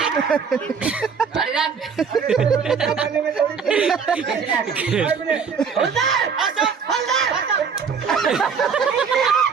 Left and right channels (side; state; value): left; quieter; 6.1 dB